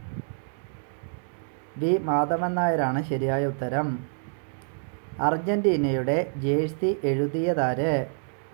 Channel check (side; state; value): left; silent; 60 dB below the other